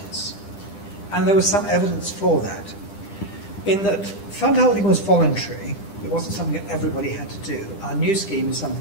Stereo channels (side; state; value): right; late; 10 ms